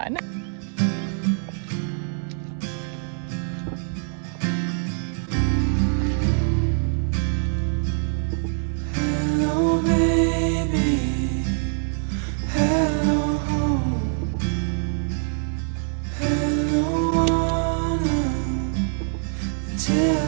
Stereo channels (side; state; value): left; silent; 62 dB below the other